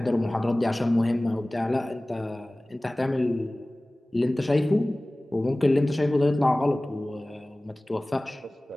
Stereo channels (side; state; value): both; normal; correlation 0.98